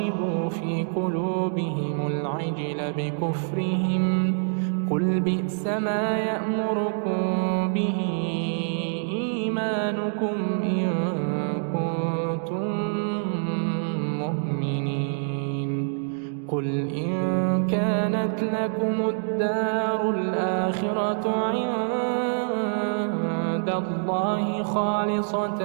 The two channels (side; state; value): left; silent; digital silence